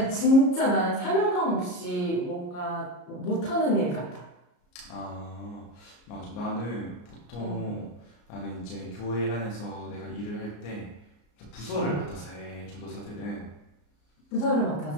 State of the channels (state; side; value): late; right; 34 ms